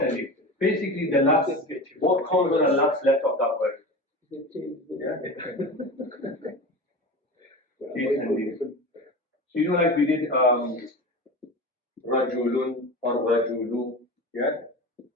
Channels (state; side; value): normal; both; correlation 0.30